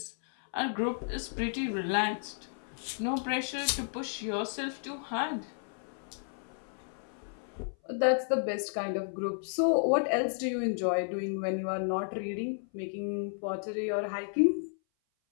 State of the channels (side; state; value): right; silent; 56 dB below the other